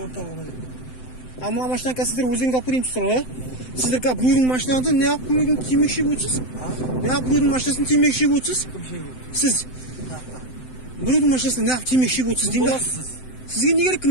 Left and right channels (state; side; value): late; right; 7.8 ms